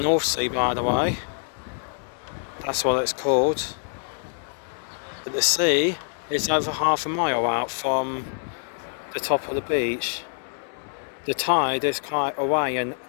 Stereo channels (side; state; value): right; silent; digital silence